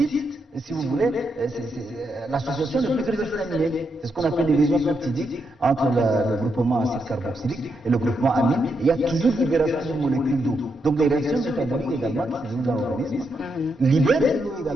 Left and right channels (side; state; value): both; normal; correlation 0.82